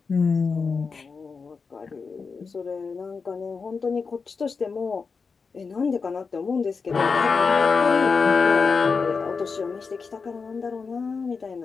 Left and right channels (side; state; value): right; quieter; 5.0 dB